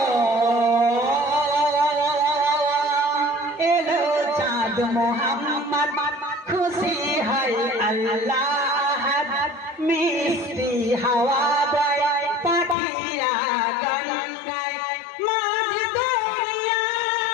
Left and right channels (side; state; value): right; drops out; at 12.8 s